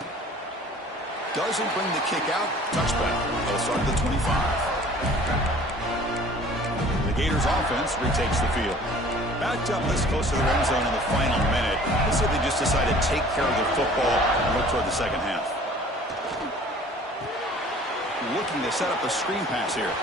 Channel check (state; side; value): normal; both; correlation 0.50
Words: Doesn't bring the kick out. Touchback. They'll start at the 25. The Gators offense retakes the field. Backed up this close to the end zone in the final minute. Let's say they just decided to take care of the football and look toward the second half. Looking to set up a screen pass here.